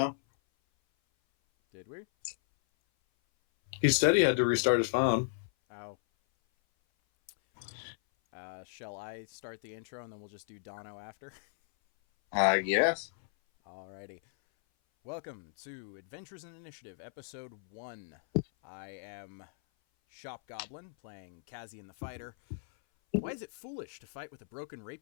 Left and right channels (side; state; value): right; silent; 54 dB below the other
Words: Did we? He said he had to restart his phone. Oh. Shall I start the intro and then we'll just do Dono after? Yes. Alrighty. Welcome to Adventures in Initiative, Episode 1. I am Shop Goblin, playing Kazi and the Fighter. Why is it foolish to fight with a broken